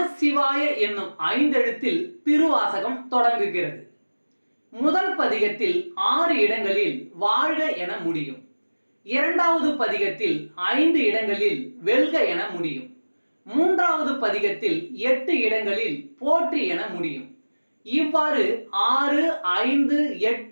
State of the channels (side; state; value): both; inverted; correlation -1.00